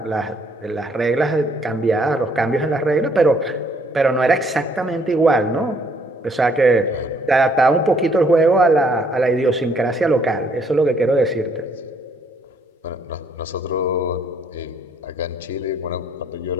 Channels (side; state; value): both; normal; correlation 0.66